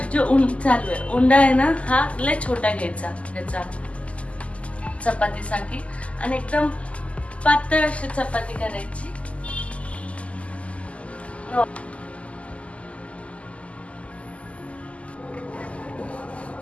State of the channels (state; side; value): late; right; 0.063 ms